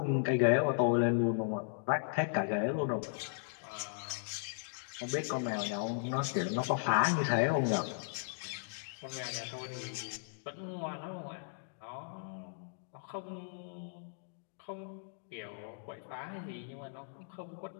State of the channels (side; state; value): right; silent; digital silence